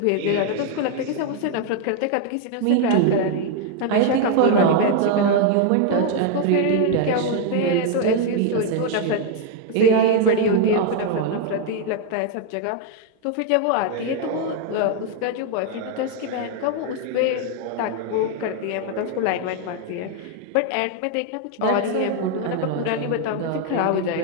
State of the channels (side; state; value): both; different; correlation 0.00